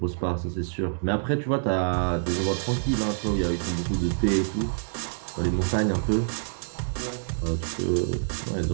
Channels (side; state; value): left; silent; digital silence